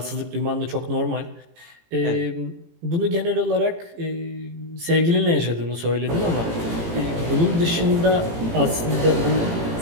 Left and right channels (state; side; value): late; left; 18 ms